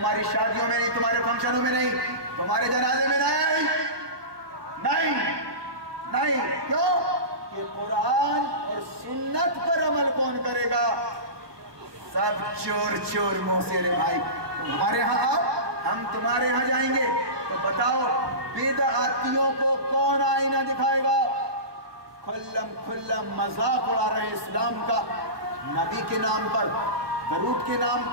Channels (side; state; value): left; late; 1.2 ms